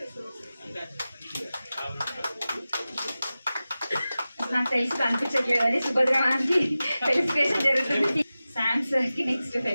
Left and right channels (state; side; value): inverted; both; correlation -0.95